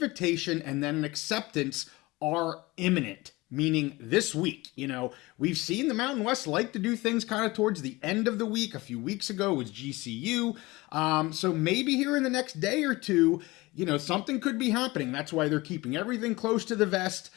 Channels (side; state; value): right; quieter; 21.6 dB